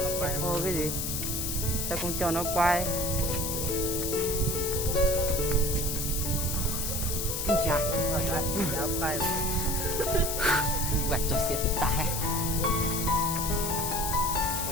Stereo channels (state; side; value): noise; left; hiss, 2 dB below the sound